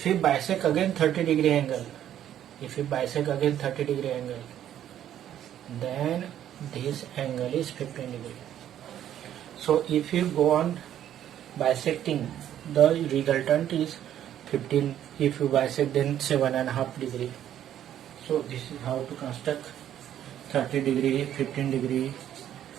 we bisect again 30 degree angle, then this angle is 15 degree. So if you go on bisecting, the resultant is 15. If you bisect, then 7.5 degree. So this is how to construct 30 degree, 15 degree,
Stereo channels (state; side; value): quieter; left; 10.9 dB